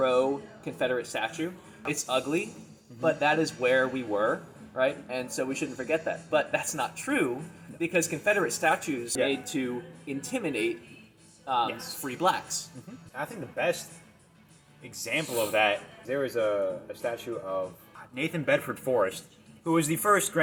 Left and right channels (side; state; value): both; identical; correlation 1.00